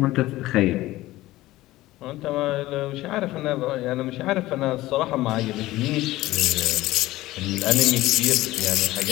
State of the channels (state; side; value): quieter; right; 17.2 dB